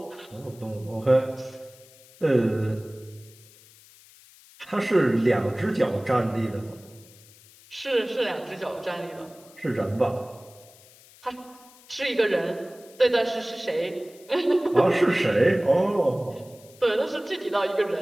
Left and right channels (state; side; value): noise; left; hiss, 24 dB below the sound